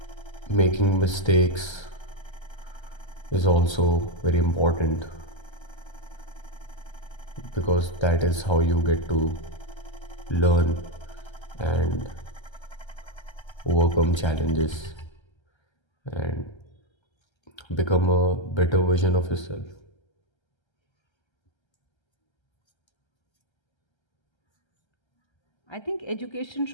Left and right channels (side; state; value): right; late; 1.3 ms